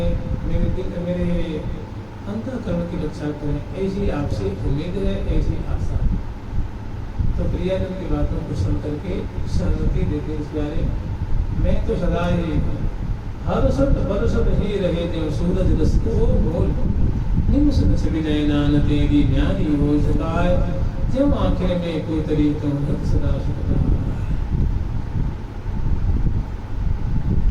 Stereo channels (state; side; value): identical; both; correlation 1.00